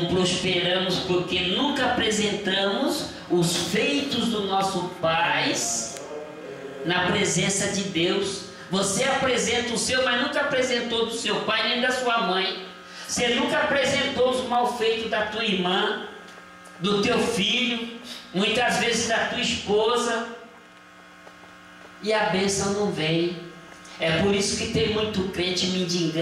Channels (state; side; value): identical; both; correlation 1.00